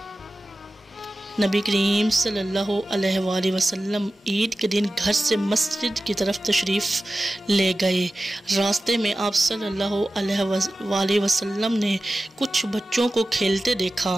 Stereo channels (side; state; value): both; normal; correlation 0.95